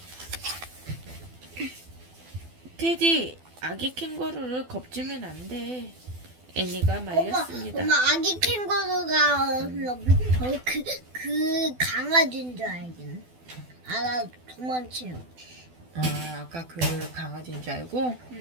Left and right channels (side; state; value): left; late; 12 ms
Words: 테디, 아기 캥거루를 겁주면 안 돼. 애니가 말렸습니다. 엄마 아기 캥거루가 그 강아지인 줄 알긴. 나 도망치요. 아, 아까 그 강아지인 줄 알고?